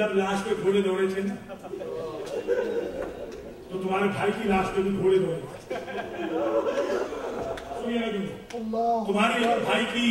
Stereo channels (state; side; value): identical; both; correlation 1.00